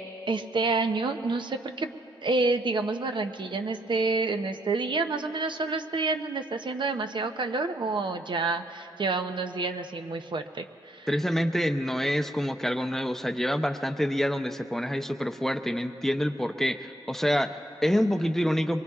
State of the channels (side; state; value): both; normal; correlation 0.73